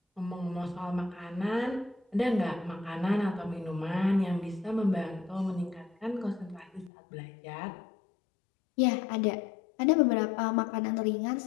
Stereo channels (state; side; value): drops out; right; at 6.9 s